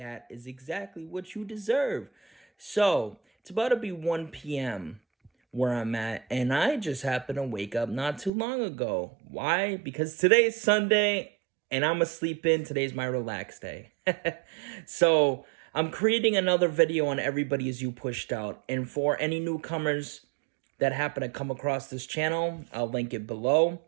is exactly what you deserve. So, it's about to be 1 p.m. where I'm at, and I just happened to wake up not too long ago. Why? Because today's Sunday, and I'm asleep in. Today's my relax day. So, I'm creating another video on Everybody Is You Pushed Out, and for any newcomers that happen to come across this channel, I'll link it below.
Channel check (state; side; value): drops out; left; at 8.3 s